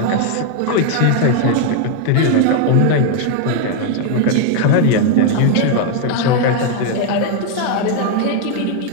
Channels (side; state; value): both; different; correlation 0.00